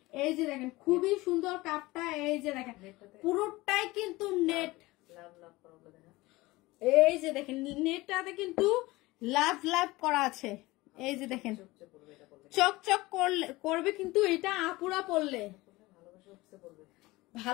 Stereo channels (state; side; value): quieter; right; 20.4 dB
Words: এই যে দেখেন খুবই সুন্দর কাপটা। এই যে দেখেন পুরোটাই কিন্তু নেট। এই যে দেখেন নেটটাতে কিন্তু লাভ লাভ করা আছে। এই যে দেখেন চকচক করবে কিন্তু এটা আপুরা পড়লে,